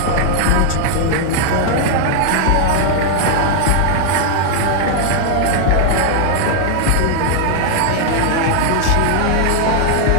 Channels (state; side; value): different; both; correlation 0.00